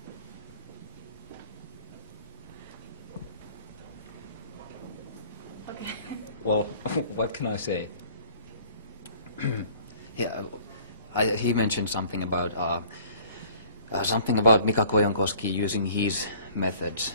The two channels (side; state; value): both; inverted; correlation -0.52